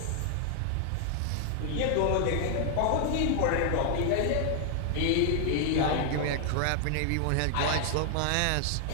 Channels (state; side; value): different; both; correlation 0.00